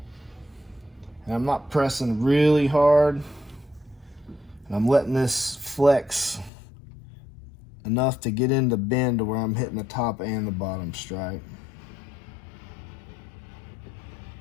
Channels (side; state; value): right; drops out; at 6.5 s